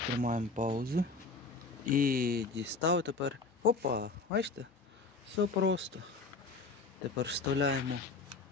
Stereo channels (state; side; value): quieter; right; 3.9 dB